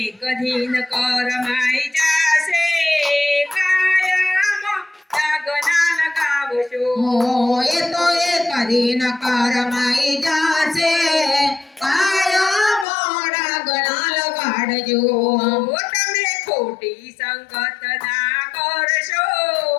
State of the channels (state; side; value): drops out; right; at 12.9 s